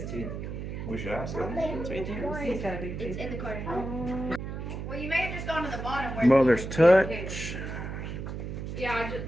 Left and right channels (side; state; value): right; noise; hum, 6 dB below the sound